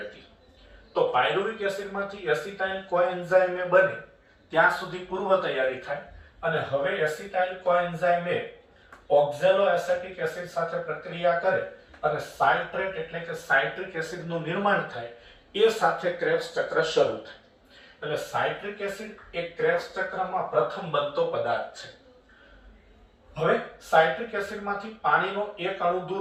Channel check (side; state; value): both; identical; correlation 1.00